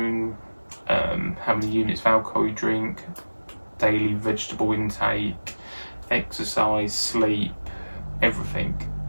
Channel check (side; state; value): both; inverted; correlation -1.00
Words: how many units of alcohol you drink, daily vegetable intake, exercise, sleep, everything.